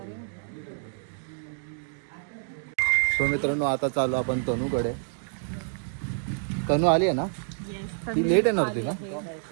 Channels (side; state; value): left; silent; digital silence